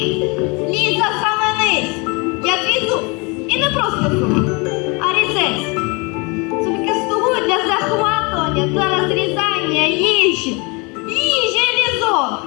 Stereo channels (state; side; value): quieter; right; 29.0 dB